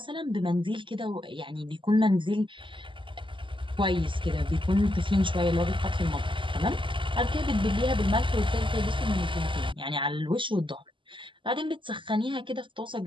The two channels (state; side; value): late; left; 0.24 ms